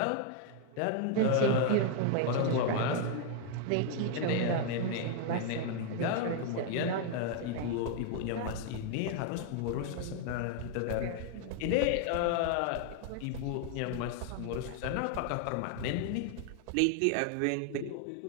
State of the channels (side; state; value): both; different; correlation 0.00